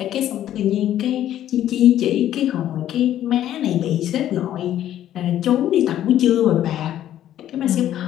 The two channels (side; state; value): right; quieter; 11.9 dB